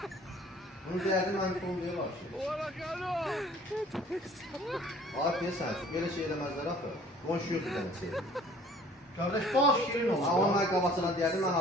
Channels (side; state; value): both; normal; correlation 0.53